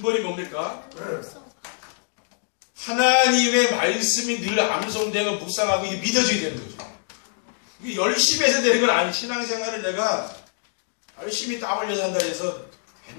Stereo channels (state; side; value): silent; right; digital silence